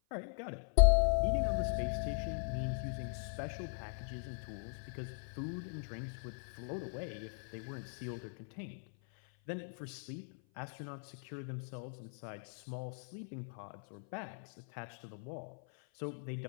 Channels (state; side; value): silent; right; 52 dB below the other